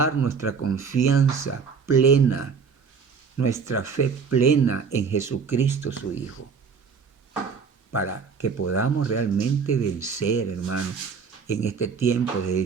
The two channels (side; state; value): left; quieter; 5.8 dB